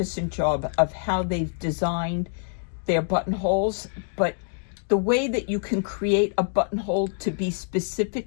job of how they've designed their buttonholes, but the way that you can create a buttonhole to be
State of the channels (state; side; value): silent; right; digital silence